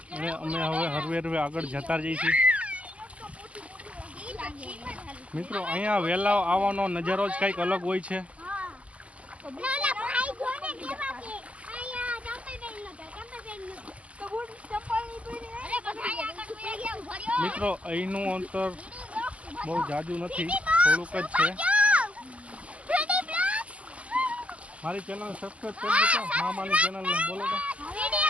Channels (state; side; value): late; left; 0.063 ms